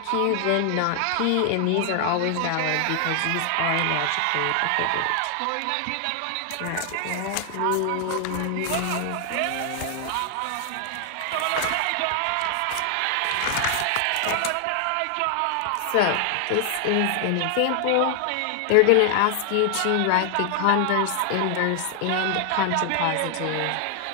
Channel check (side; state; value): both; different; correlation 0.00